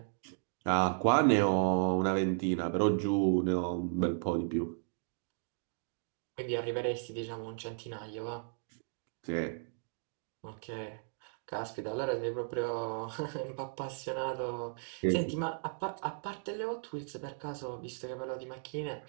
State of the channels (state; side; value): silent; left; digital silence